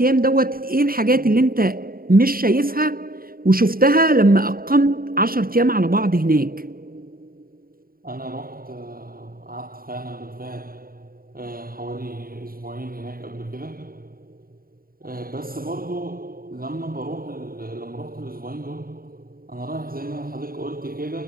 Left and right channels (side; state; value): left; late; 0.42 ms